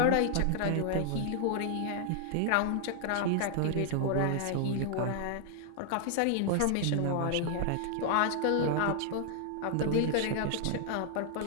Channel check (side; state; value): both; different; correlation 0.00